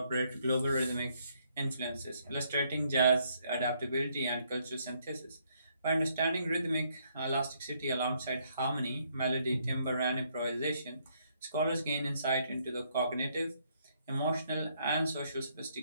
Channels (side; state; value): both; inverted; correlation -0.71